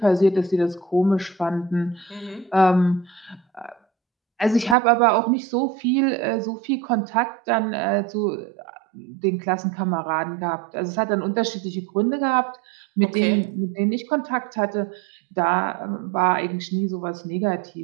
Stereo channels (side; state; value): left; drops out; at 4.8 s